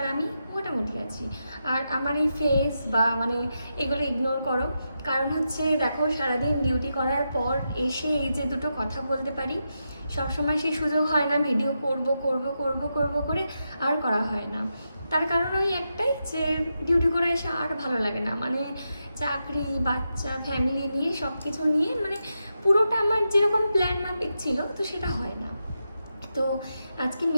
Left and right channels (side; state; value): both; inverted; correlation -0.87